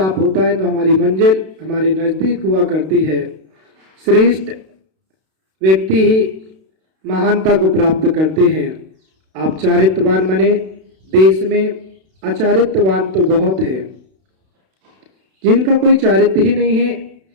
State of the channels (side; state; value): left; late; 32 ms